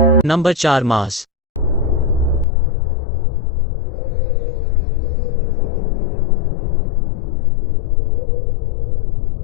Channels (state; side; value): drops out; right; at 2.5 s